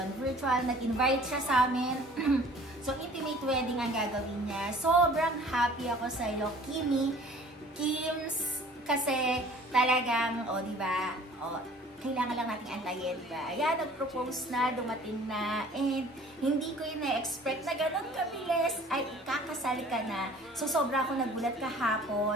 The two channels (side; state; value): both; normal; correlation 0.50